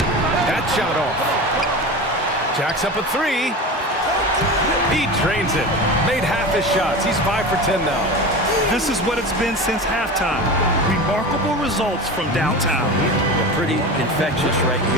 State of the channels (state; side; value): normal; both; correlation 0.29